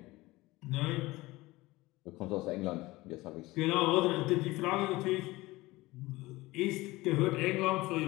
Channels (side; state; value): right; quieter; 19.9 dB